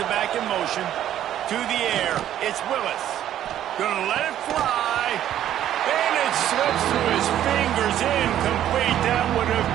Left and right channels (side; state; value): left; quieter; 11.5 dB